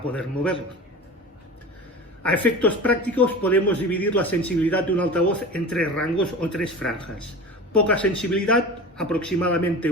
poder moverlo. A efectos prácticos podemos dividir la sensibilidad de un altavoz en tres rangos o tres franjas. Poca sensibilidad, aproximadamente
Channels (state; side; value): normal; both; correlation 0.34